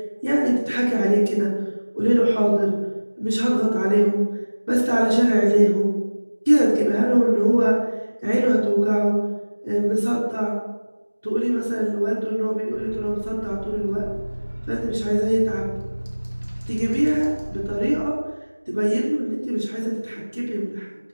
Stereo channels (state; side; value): inverted; both; correlation -1.00